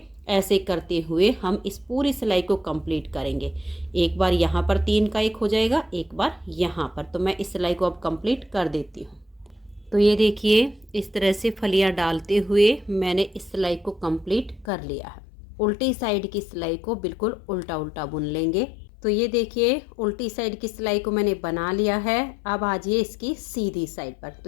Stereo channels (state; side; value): drops out; right; at 14.7 s